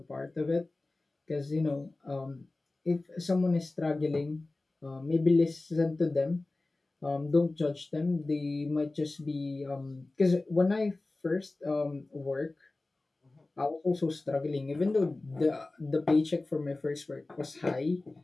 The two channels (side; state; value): right; quieter; 3.1 dB